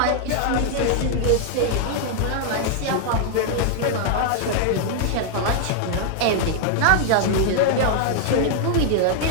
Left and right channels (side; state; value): both; different; correlation 0.00